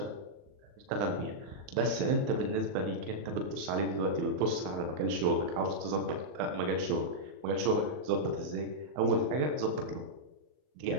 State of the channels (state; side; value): late; left; 39 ms